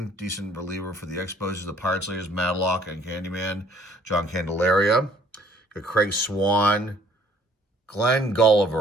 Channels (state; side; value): normal; both; correlation 0.59